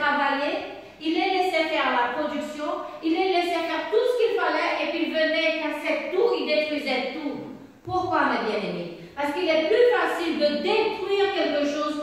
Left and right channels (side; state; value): both; identical; correlation 1.00